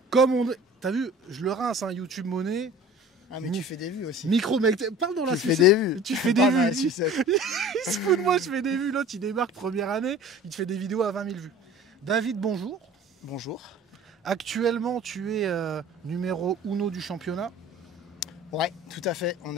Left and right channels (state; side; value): normal; both; correlation 0.44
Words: Comme on... T'as vu, je le rince, hein, YouTube monnaie. Ah mais tu fais des vues aussi. Micro mec, parle dans la sucette. Tu fais des vues. Tu fais des vues. Il se fout de moi, je fais des vues. L'autre, il démarque première année, il te fait des vidéos à 20 000 vues. David, bonjour. Bonjour. Actuellement, tu es numéro 1 du championnat. Ouais, tout à fait. On